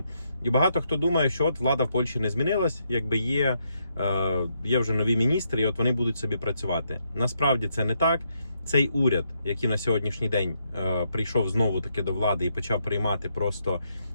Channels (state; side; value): inverted; both; correlation -0.78